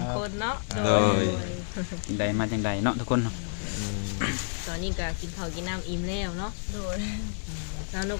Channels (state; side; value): silent; right; digital silence